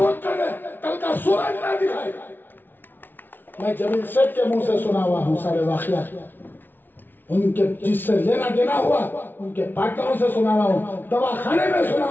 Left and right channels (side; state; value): right; late; 0.094 ms